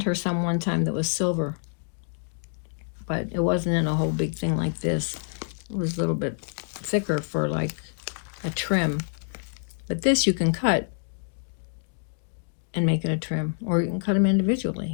her some one time that was silver. But it wasn't in a whole big thing like this. It was a little bit thicker for like a trim. But this you can cut and make it a trim. Or you can cut them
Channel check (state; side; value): silent; right; digital silence